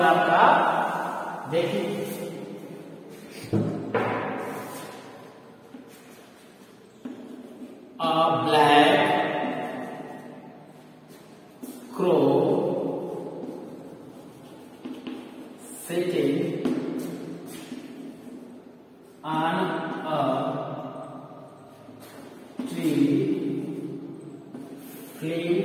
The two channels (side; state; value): both; identical; correlation 1.00